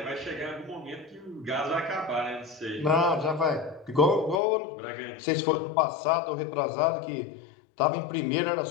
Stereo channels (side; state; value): right; drops out; at 4.4 s